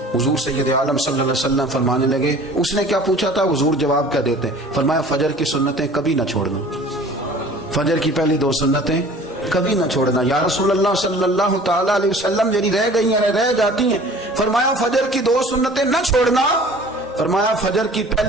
حضور سید عالم صلی اللہ علیہ وسلم فرمانے لگے، اس نے کیا پوچھا تھا، حضور جواب کیا دیتے، فرمایا فجر کی سنتیں کبھی نہ چھوڑنا، فجر کی پہلی 2 سنتیں کبھی نہ چھوڑنا. یا رسول اللہ صلی اللہ تعالی علیہ وسلم میری رہ گئی ہیں رہ جاتی ہیں، فرمایا فجر کی 2 سنتیں نہ چھوڑنا، فرمایا فجر کی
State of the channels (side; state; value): both; normal; correlation 0.46